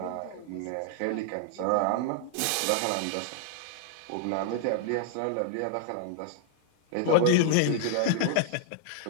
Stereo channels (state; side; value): different; both; correlation -0.01